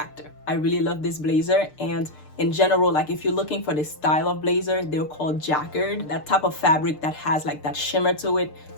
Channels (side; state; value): right; late; 6.7 ms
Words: I really love this blazer. And in general, like, if you're looking for this style of blazer, they're called Jacquard, that type of fabric that has like that shimmer to it.